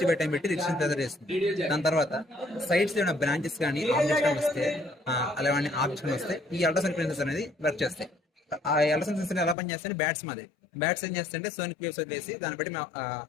by time పెట్టి డిస్టెన్స్ మెజర్ చేస్తుంది. దాని తర్వాత సైడ్స్ ఏమైనా బ్రాంచెస్ కానీ ఆబ్జెక్ట్స్ కానీ వస్తే అలాంటి ఆబ్జెక్ట్స్ కానీ వస్తే ఈ అల్ట్రాసౌండ్ సెన్సర్స్ అనేది వర్క్ చేస్తాయి. ఆ అల్ట్రాసౌండ్ సెన్సర్ ఎలా పనిచేస్తాయి బ్యాట్స్ మాది బ్యాట్స్ ఏం చేస్తాయంటే సోనిక్ వేవ్స్ వదిలేసి దాన్ని బట్టి మేము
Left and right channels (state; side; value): drops out; right; at 9.6 s